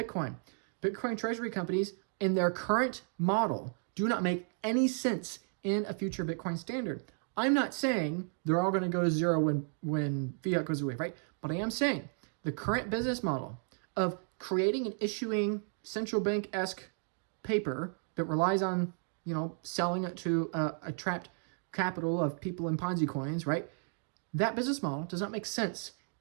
Bitcoin treasury companies in their current model do not make any sense in a future Bitcoin standard. I'm not saying they're all going to go to zero when fiat goes away, right? But I am saying the current business model of creating and issuing central bank-esque paper that relies on, selling it to a trapped capital of people in Ponzi coins, right? That business model does not make sense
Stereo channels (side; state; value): left; silent; 55 dB below the other